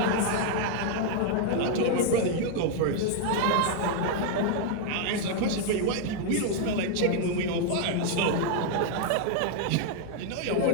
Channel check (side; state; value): both; different; correlation 0.00